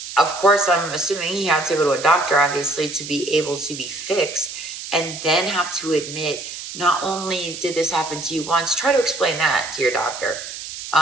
of course, I'm assuming he had to go to a doctor, obviously, to be able to be fixed, and then have to admit, not only did this happen to you once, try to explain that to your doctor.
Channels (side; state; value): right; noise; hiss, 10 dB below the sound